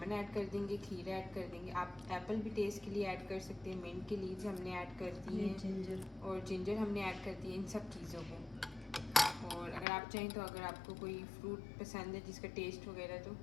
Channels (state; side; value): drops out; right; at 9.9 s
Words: ऐड कर देंगे, खीरा ऐड कर देंगे। आप एप्पल भी टेस्ट के लिए ऐड कर सकते हैं, मिंट की लीव्स हमने ऐड कर दी हैं, जिंजर हमने ऐड कर दी है, इन सब चीज़ों को। और अगर आप चाहें तो अगर आपको कोई फ्रूट पसंद है जिसका टेस्ट वगैरह, तो